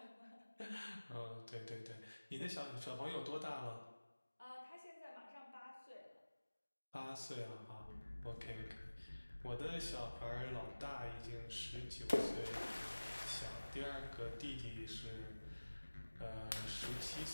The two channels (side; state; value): both; inverted; correlation -1.00